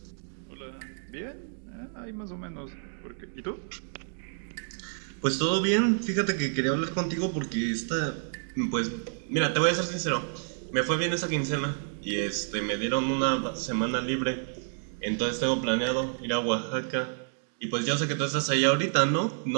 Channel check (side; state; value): left; silent; digital silence